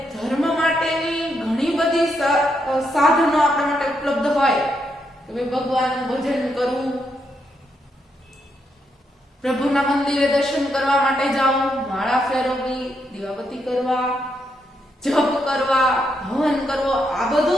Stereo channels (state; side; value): normal; both; correlation 0.79